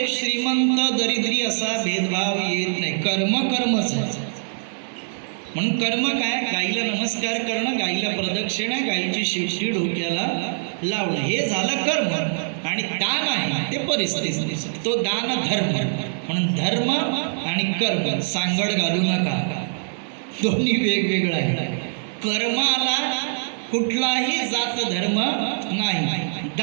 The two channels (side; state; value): left; silent; 63 dB below the other